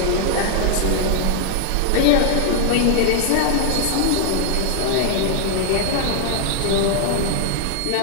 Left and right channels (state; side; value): different; both; correlation 0.00